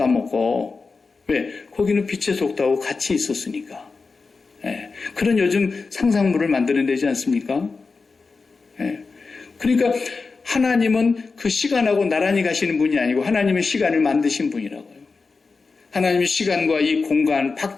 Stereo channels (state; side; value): quieter; right; 4.4 dB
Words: 안 먹고. 왜? 거기는 빛의 속도하고 같이 있었으니까. 예. 그런 요즘 상상물을 만들어내지 않습니까? 예. 그러니까 하나님은 그 시간하고 나란히 가시는 분이 아니고 하나님은 시간을 만드신 분이라고요. 하나님이 시간과 이 공간